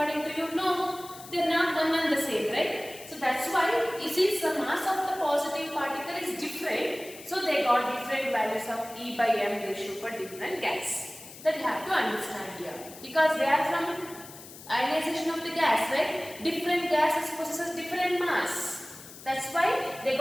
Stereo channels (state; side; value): noise; left; hiss, 16 dB below the sound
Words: to you? No, they are not one and the same, right? So that's why since the mass of the positive particle is different, so they got different values of E by M ratio for different gas. That you have to understand here, because they are from ionization of the gas, right? Different gases possesses different mass. That's why they